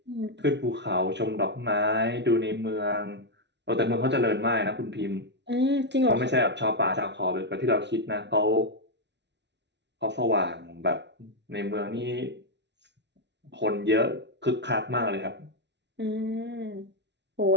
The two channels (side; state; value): left; late; 0.51 ms